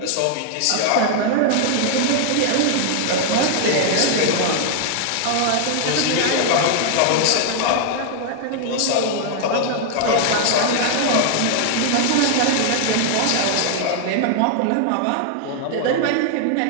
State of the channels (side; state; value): both; different; correlation 0.00